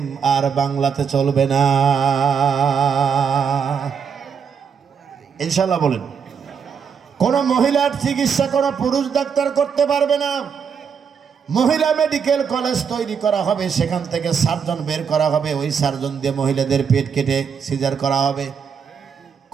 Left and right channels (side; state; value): left; quieter; 6.7 dB